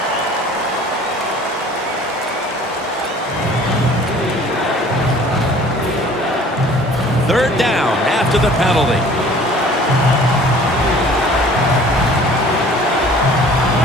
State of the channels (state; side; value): normal; both; correlation 0.50